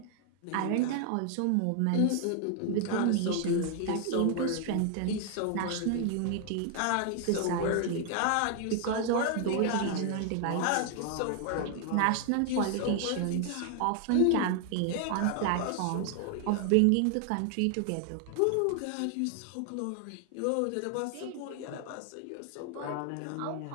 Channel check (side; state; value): both; different; correlation 0.00